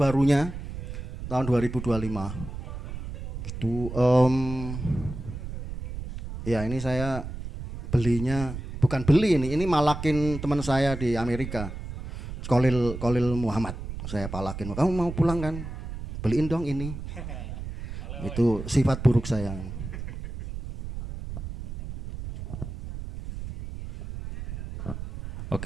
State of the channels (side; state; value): right; noise; rumble, 8 dB below the sound